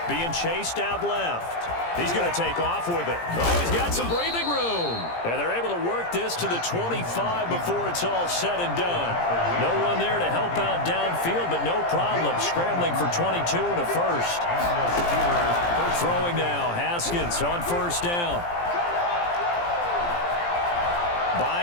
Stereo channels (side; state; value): right; late; 17 ms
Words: being chased out left. He's going to take off with it. Oh, he's got some breathing room. And they're able to work this to the 25 before it's all said and done. No one there to help out downfield, but no problem. Scrambling for 22 and a first. Throwing now, Haskins on first down.